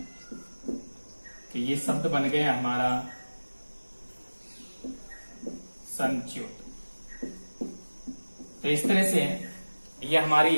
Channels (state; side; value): inverted; both; correlation -1.00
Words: कि ये शब्द बन गया हमारा संच्युत। तो इस तरह से ये